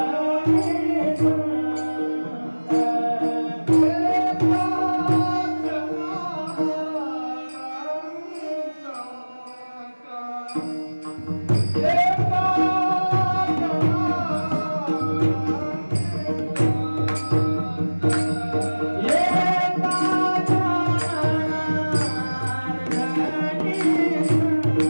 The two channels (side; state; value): both; inverted; correlation -1.00